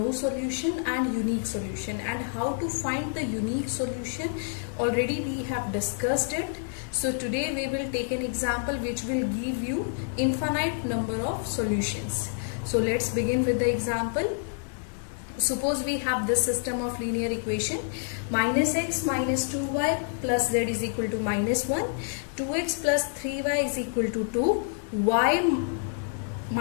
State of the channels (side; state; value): right; silent; digital silence